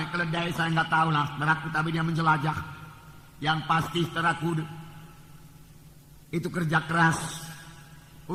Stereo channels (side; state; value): both; identical; correlation 1.00